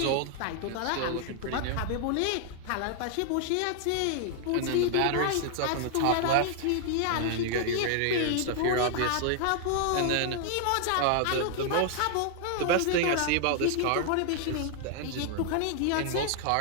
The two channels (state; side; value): different; both; correlation 0.00